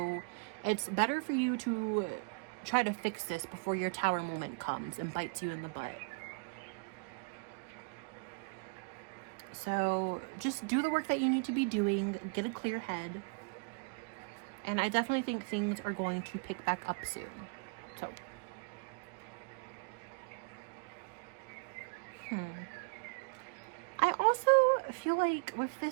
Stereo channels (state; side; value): quieter; left; 34.8 dB